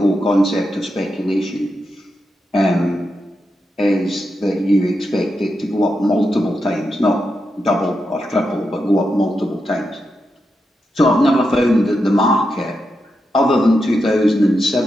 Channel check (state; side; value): normal; both; correlation 0.86